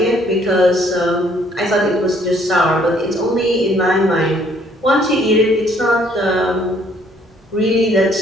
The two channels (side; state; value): both; normal; correlation 0.63